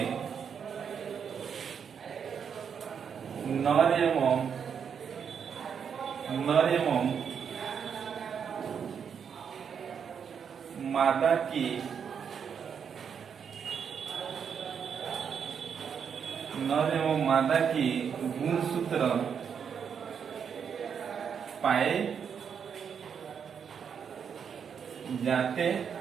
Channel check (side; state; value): left; quieter; 7.2 dB